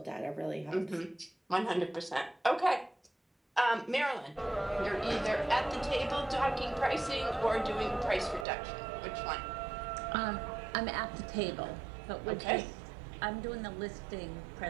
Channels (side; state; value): left; drops out; at 8.5 s